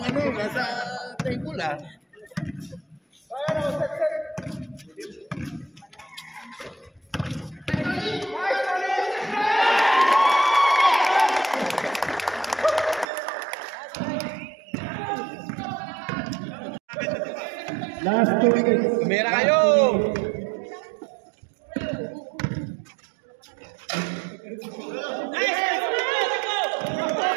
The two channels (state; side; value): drops out; left; at 13.1 s